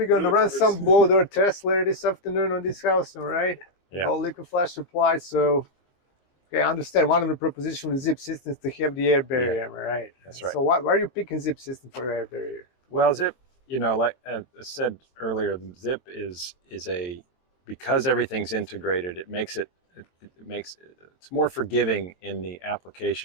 going to run some blow door tests later this afternoon on this house, all right? Yeah. No liquid flash supply, so okay, I understand one of the propositions with Zip Systems to have the air barrier, right? That's right. So why are you picking Zip System for your air barrier? Well, Zip, you know, like I said earlier, Zip is because everything's integrated, it's more forgiving in the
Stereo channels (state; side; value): late; right; 22 ms